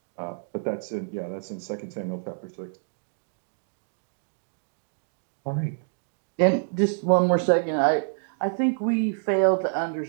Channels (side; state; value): left; silent; digital silence